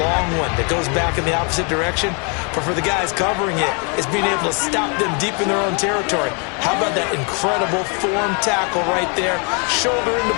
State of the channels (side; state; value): right; quieter; 35.9 dB